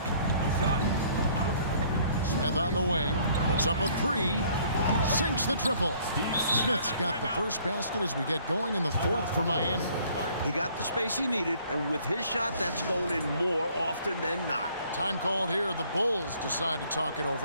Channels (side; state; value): both; inverted; correlation -0.59